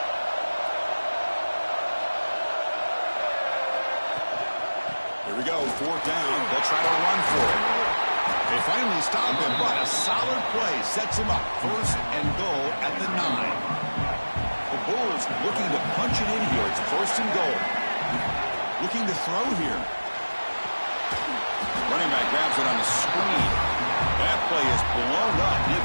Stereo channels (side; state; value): both; inverted; correlation -1.00